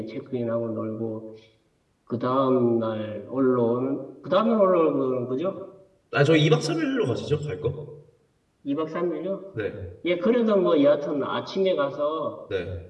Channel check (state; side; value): identical; both; correlation 1.00